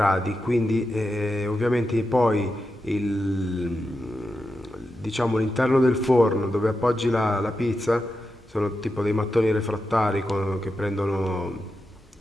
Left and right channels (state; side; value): normal; both; correlation 0.88